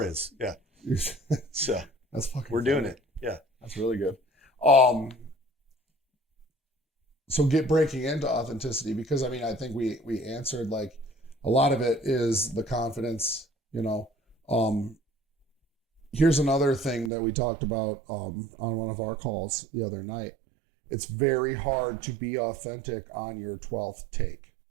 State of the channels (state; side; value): drops out; left; at 17.1 s